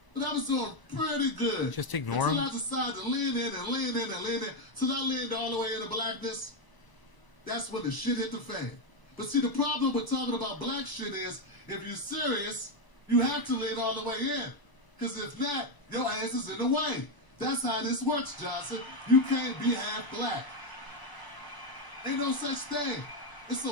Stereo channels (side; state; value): right; late; 1.0 ms